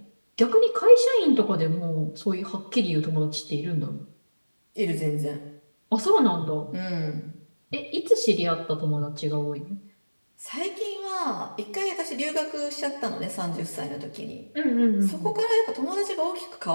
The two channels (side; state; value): both; inverted; correlation -1.00